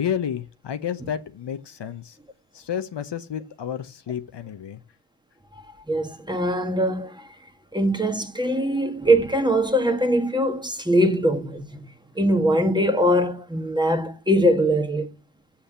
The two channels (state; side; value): normal; both; correlation 0.59